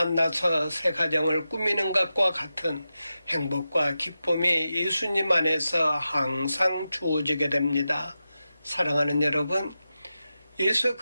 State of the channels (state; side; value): inverted; both; correlation -0.91